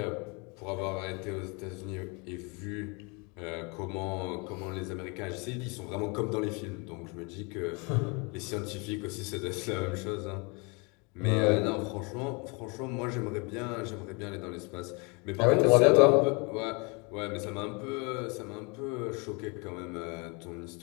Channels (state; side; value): quieter; right; 30.7 dB